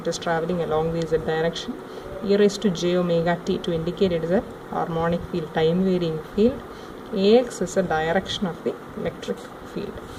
is traveling along the z direction, e raised to j omega t to indicate it is a harmonic field, time varying field. Ax is the direction of the electric field.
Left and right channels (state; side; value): identical; both; correlation 1.00